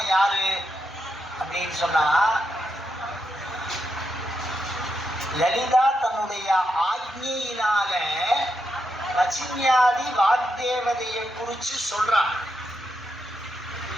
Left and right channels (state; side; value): normal; both; correlation 0.84